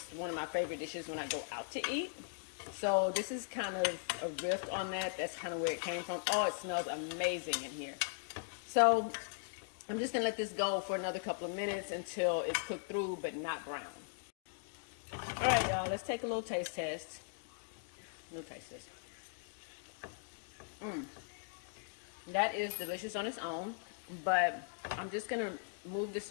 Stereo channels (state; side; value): silent; right; digital silence